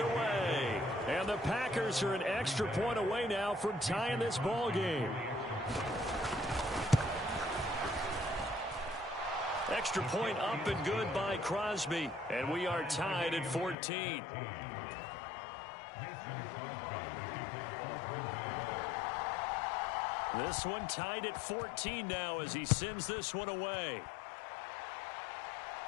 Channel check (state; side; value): drops out; right; at 13.8 s